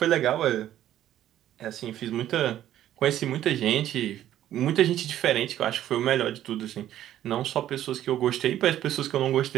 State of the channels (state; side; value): quieter; left; 12.2 dB